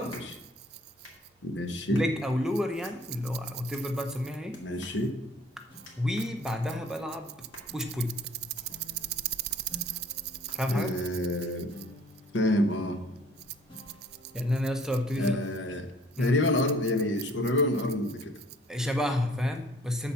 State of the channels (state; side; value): normal; both; correlation 0.55